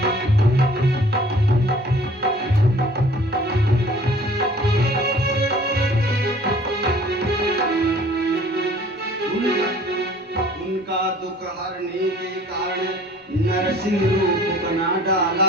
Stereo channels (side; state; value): both; normal; correlation 0.51